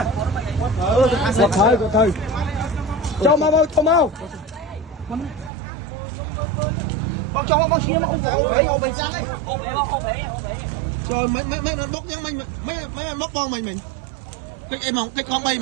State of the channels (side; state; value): left; drops out; at 5.5 s